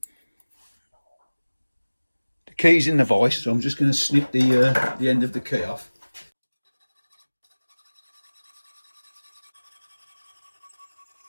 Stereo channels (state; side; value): inverted; both; correlation -1.00